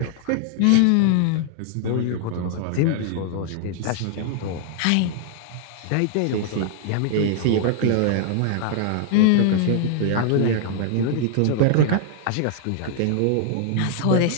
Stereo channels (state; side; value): different; both; correlation -0.01